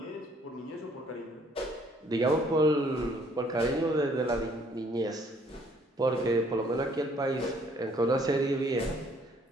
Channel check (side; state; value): both; normal; correlation 0.62